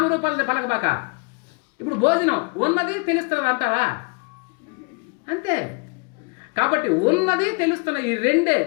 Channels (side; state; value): right; quieter; 32.7 dB